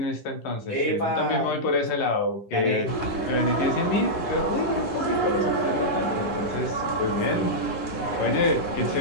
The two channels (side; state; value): right; late; 11 ms